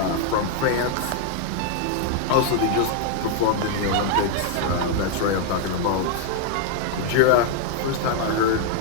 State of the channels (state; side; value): different; both; correlation 0.00